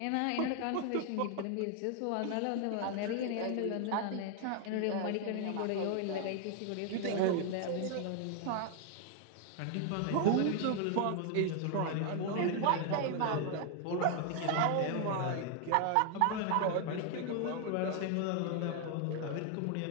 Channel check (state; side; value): different; both; correlation 0.00